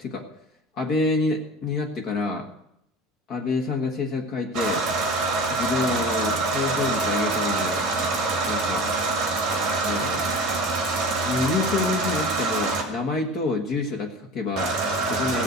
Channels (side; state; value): both; normal; correlation 0.35